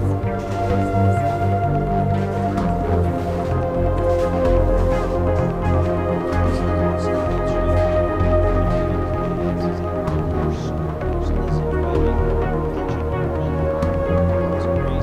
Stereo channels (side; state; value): both; identical; correlation 1.00